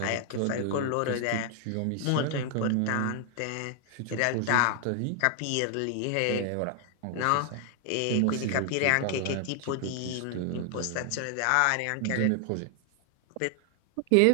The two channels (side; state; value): both; different; correlation 0.00